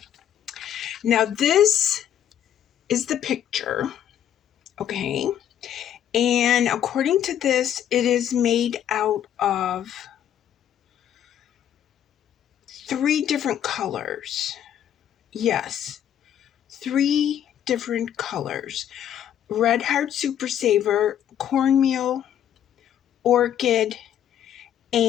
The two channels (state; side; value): quieter; right; 10.2 dB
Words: Now this is the picture, okay? And according to this, it is made out of 3 different colors. Yes, 3 different colors. Red Heart Super Saver, Cornmeal, Orchid,